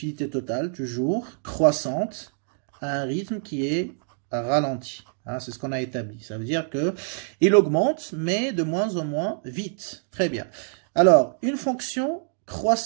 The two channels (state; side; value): silent; left; digital silence